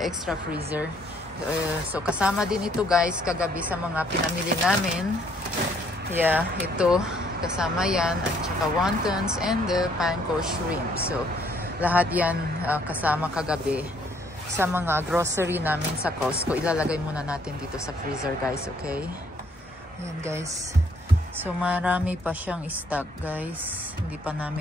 extra freezer. So kasama din ito guys kagabi sa mga pinamili namin. Yeah, ito kasama yan at saka wontons and the panko shrimp. So lahat yan kasama kagabi sa mga grocery namin sa Costco. Ilalagay muna natin dito sa freezer guys, okay? Ayan guys. So marami pa siyang stock guys. Hindi pa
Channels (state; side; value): normal; both; correlation 0.65